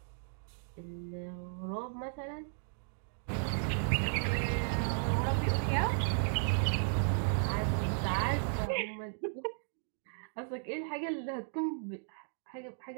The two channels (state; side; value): silent; left; digital silence